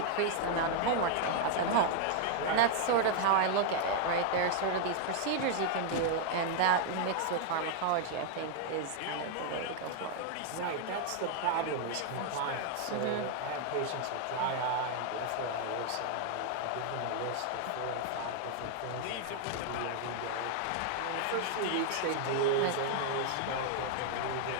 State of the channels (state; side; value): different; both; correlation 0.00